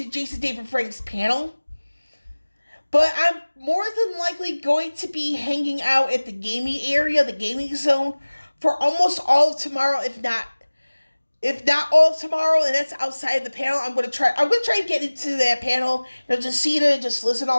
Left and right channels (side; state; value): both; inverted; correlation -1.00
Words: Jason David Frank's panel. But I'm more than likely going to be hanging out at the gaming area, the gaming zone, for almost all of tomorrow, if not all of tomorrow, and that's outside of the panel. I'm going to try to get into that panel, just see it and just listen to